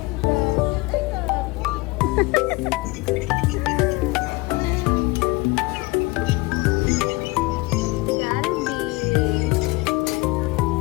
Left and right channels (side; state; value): right; quieter; 23.4 dB